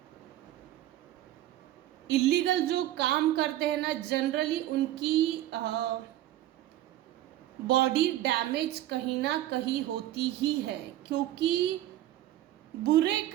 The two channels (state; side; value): quieter; left; 14.1 dB